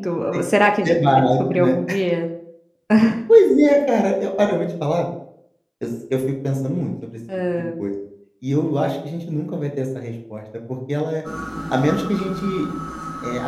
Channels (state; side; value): identical; both; correlation 1.00